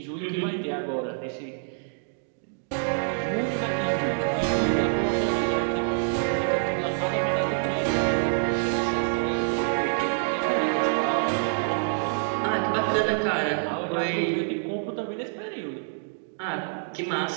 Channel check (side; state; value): left; silent; digital silence